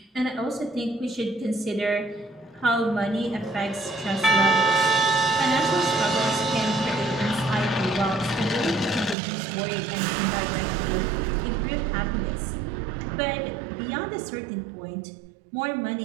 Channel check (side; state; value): left; drops out; at 9.2 s